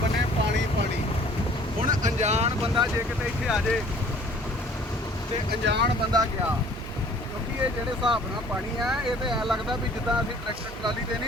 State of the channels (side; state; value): both; normal; correlation 0.53